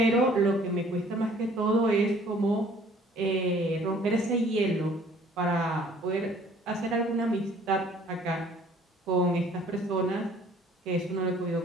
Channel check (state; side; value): normal; both; correlation 0.55